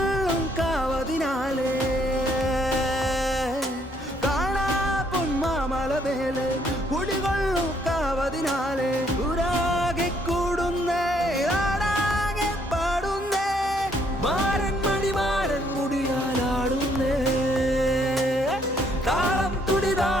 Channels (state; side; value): normal; both; correlation 0.68